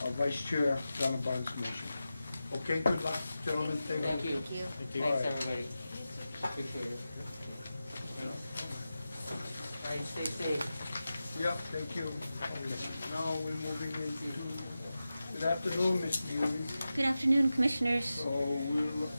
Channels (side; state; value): both; inverted; correlation -0.93